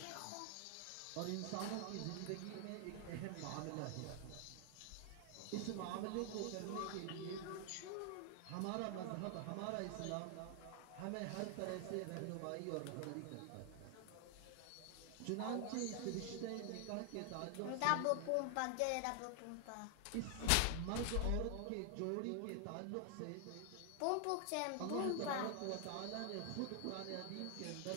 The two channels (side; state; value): both; different; correlation 0.00